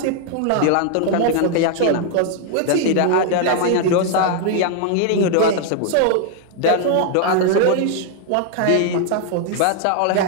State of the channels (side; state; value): both; different; correlation 0.00